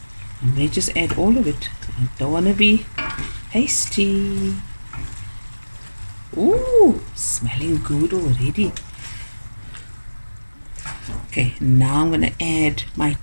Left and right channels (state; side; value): inverted; both; correlation -1.00